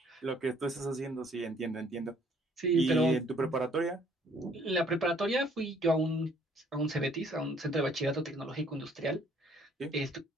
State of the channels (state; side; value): normal; both; correlation 0.61